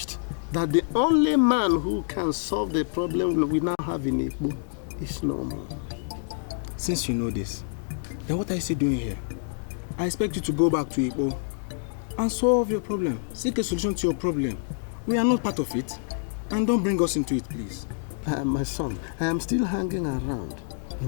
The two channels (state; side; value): silent; right; digital silence